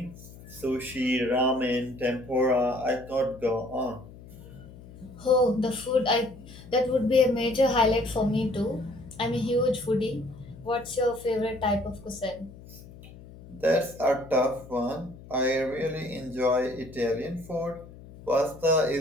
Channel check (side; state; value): left; noise; hum, 18 dB below the sound